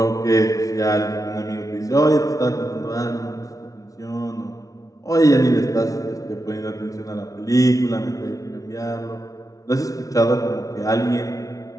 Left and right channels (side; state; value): right; late; 0.17 ms